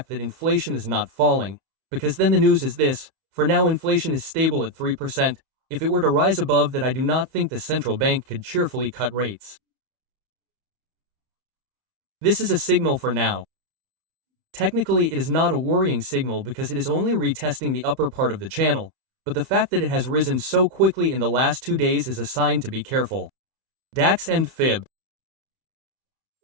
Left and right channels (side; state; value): left; late; 31 ms